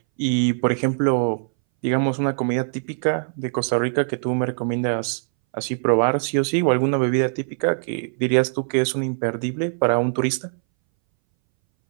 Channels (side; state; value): left; silent; 62 dB below the other